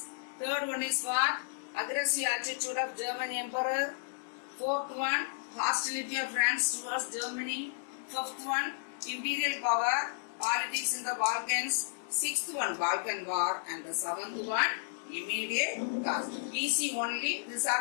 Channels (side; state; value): right; silent; digital silence